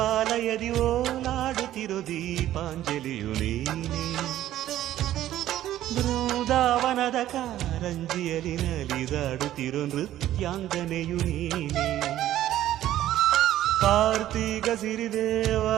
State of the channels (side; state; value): left; quieter; 13.1 dB